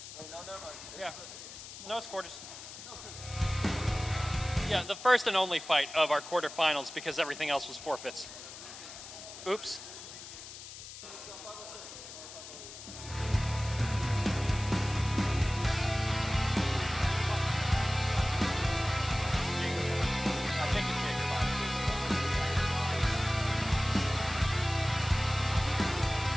Yeah, no, it's quarters. Yeah, the first and only fight of our quarterfinals because everything else was forfeits. Oops.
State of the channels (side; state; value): left; noise; hiss, 13 dB below the sound